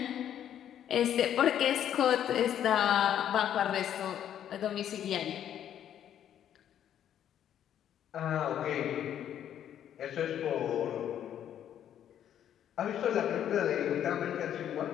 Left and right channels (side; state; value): right; quieter; 10.2 dB